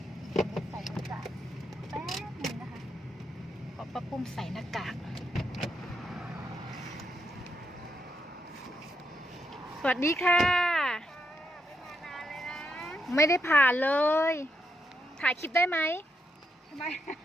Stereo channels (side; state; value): both; normal; correlation 0.81